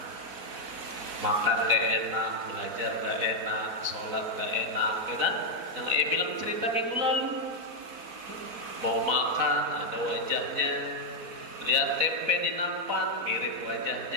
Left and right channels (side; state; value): left; late; 4.3 ms